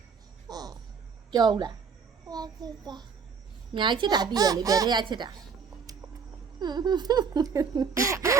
ကြောက်လားညာချစ်တာတည်ရလေဘယ်ထက်ချစ်တာ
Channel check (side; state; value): left; quieter; 5.9 dB